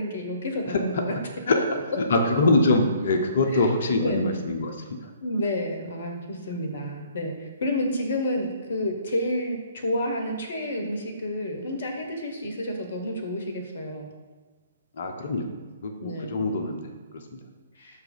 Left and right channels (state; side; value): inverted; both; correlation -0.60